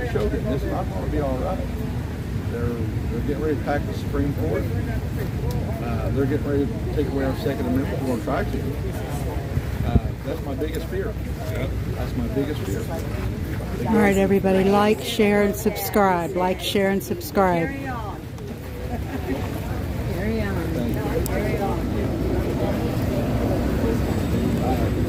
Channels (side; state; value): both; identical; correlation 1.00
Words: show them it's not going to be all right. They're getting ready to pack the Supreme Court. They're getting ready to take away our Second Amendment. We're going to try to. That's my biggest fear. That's my biggest fear. All right, everybody, like, share, and subscribe. Like, share, and subscribe. Carry on.